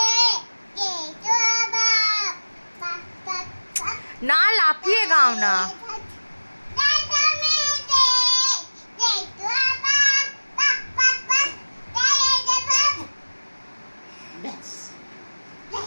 না লাফিয়ে গাও না।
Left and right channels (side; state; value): both; inverted; correlation -1.00